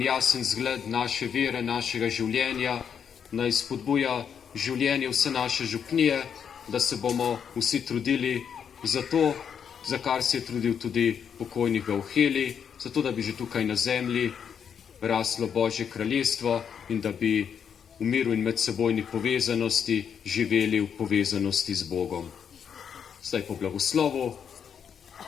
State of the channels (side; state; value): right; quieter; 7.6 dB